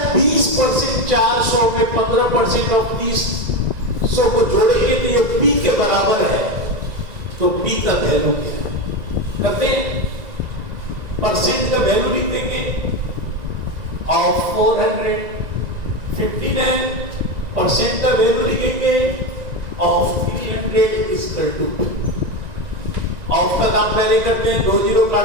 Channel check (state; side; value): late; left; 1.9 ms